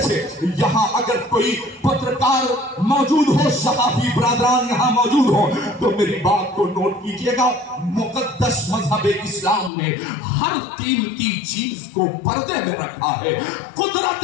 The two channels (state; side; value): drops out; right; at 9.7 s